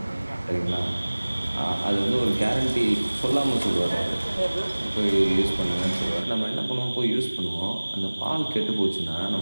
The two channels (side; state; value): both; inverted; correlation -1.00